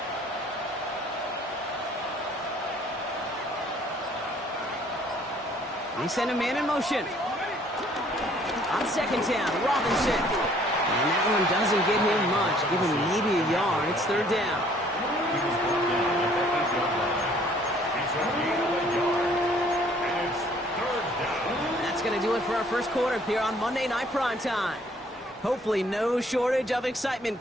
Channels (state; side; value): normal; both; correlation 0.59